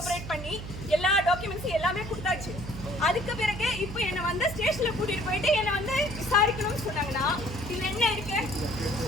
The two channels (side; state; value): right; noise; hum, 9 dB below the sound